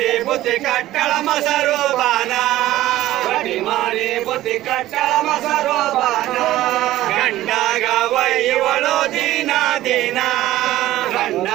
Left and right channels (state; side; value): quieter; left; 15.0 dB